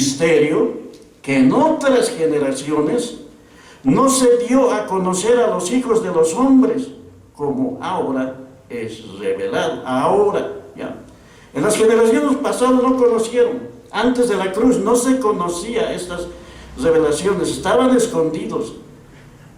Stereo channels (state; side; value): identical; both; correlation 1.00